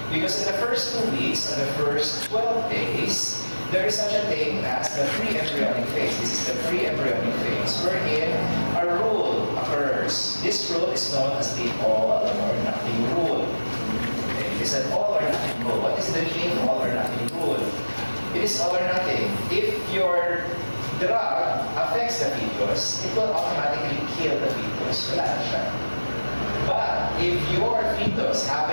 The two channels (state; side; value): inverted; both; correlation -1.00